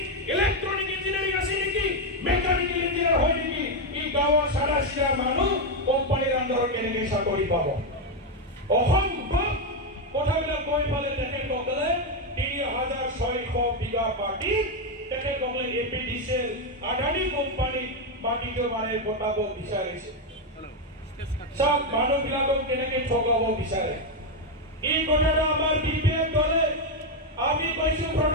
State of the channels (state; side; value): normal; both; correlation 0.05